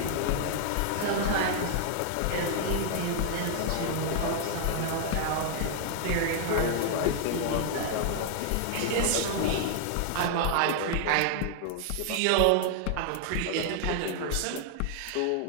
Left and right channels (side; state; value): both; different; correlation 0.00